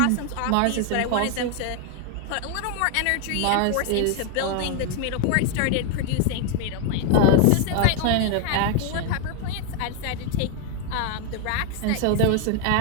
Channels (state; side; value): different; both; correlation 0.01